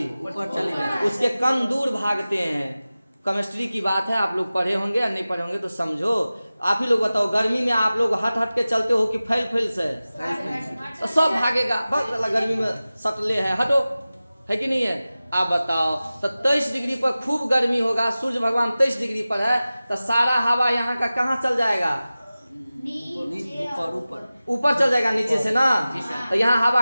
ऊपर चली जाती। उसके कण दूर भागते हैं। केमिस्ट्री की बात है, आप लोग पढ़े होंगे या नहीं पढ़े होंगे तो समझो। आप ही लोग बताओ, गर्मी में आप लोग हट के चलते हो कि फैल से? तो सब भागेगा, बस गर्मी में सटले है, हटो, है कि नहीं है? आप बताओ, तो 23 डिग्री पर खूब गर्मी होगा, सूर्य भगवान 23 डिग्री पर है, तो सारा हवा यहाँ का कहाँ चल जाएगा? ऊपर चल जाएगा नीचे से ना। तो यहाँ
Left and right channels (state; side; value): inverted; both; correlation -0.97